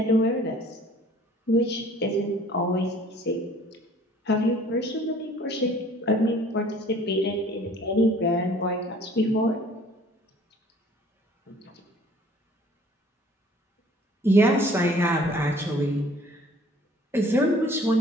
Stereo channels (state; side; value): normal; both; correlation 0.53